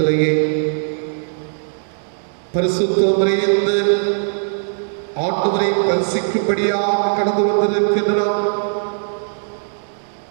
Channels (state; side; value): silent; left; digital silence